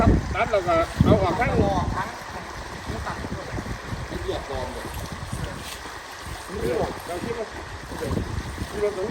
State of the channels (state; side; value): identical; both; correlation 1.00